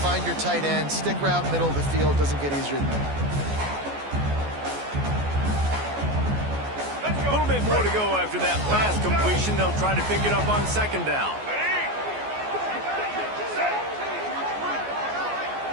find your tight end, stick route, middle of the field. Doesn't get easier than that. A little bit more to go after that last completion. They'll try to pick it up on second down.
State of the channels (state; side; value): late; left; 14 ms